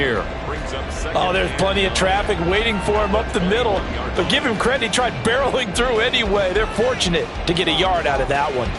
Oh, there's plenty of traffic waiting for him up the middle. But give him credit, he tried barreling through anyway. They're fortunate to get a yard out of that one.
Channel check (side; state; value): both; identical; correlation 1.00